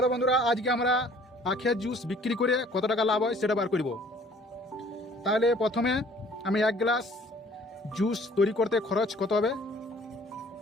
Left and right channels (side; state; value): both; normal; correlation 0.55